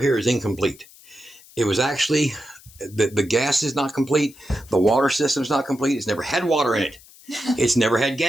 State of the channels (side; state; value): left; noise; hiss, 23 dB below the sound